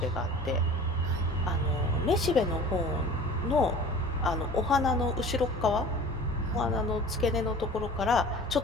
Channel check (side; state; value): both; normal; correlation 0.42